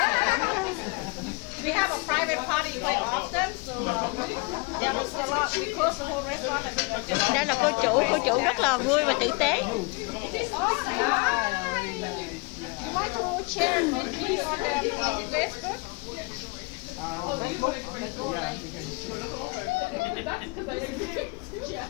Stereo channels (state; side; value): quieter; right; 28.1 dB